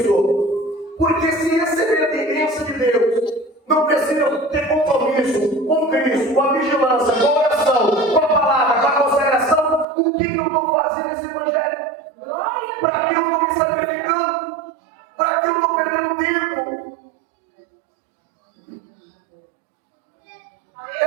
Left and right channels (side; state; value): left; drops out; at 9.9 s